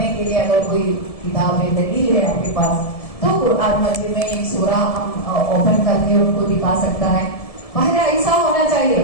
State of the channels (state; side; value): late; right; 1.7 ms